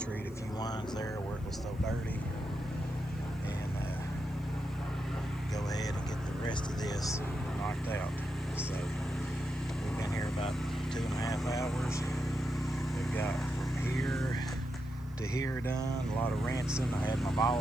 a few lines there where it was so dirty, and go ahead and get the rest of this knocked out. So we've been here about 2.5 hours. We've got from here to here done, a lot of rinsing. I had my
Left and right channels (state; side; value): noise; right; hiss, 28 dB below the sound